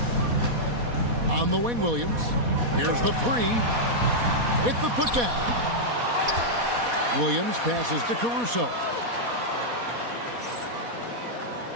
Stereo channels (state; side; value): late; left; 4.2 ms